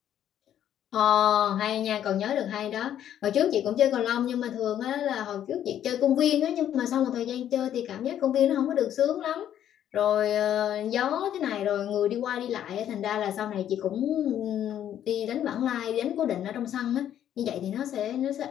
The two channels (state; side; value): quieter; right; 10.6 dB